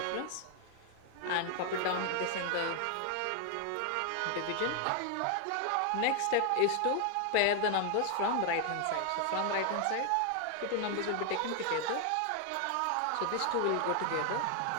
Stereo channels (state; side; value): different; both; correlation 0.00